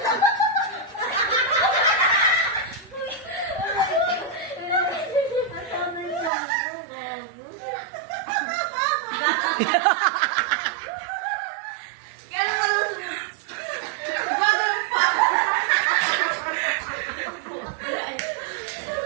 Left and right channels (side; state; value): left; drops out; at 6.3 s